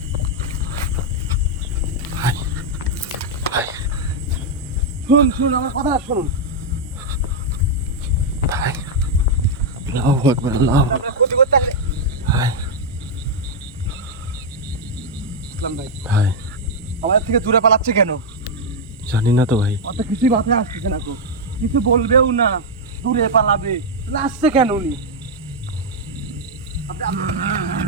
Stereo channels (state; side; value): normal; both; correlation -0.02